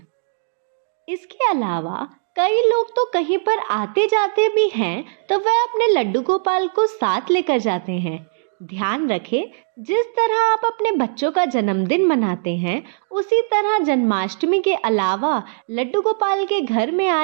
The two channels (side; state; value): left; silent; digital silence